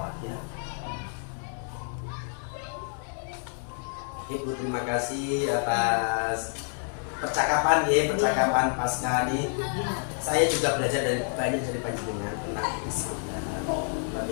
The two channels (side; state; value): right; silent; 59 dB below the other